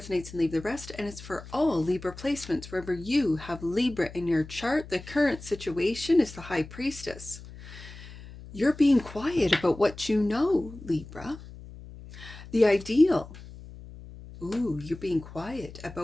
and leave the rest. And it's for all Libra placements. Wherever you have Libra in your chart, the current situation is the High Priestess. You're being quiet about what you know, Libra. The ideal. Ooh, you're being quiet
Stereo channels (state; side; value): noise; left; hum, 16 dB below the sound